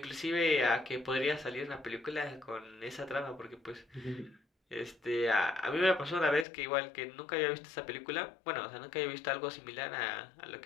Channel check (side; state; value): right; drops out; at 6.5 s